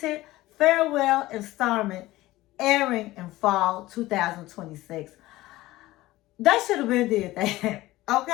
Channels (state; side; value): quieter; right; 17.6 dB